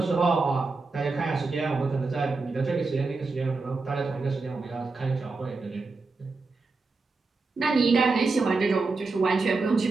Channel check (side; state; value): left; quieter; 3.9 dB